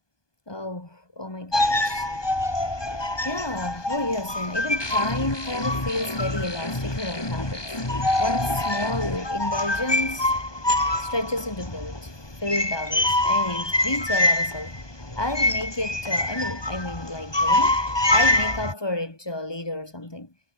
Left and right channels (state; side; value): late; right; 1.2 ms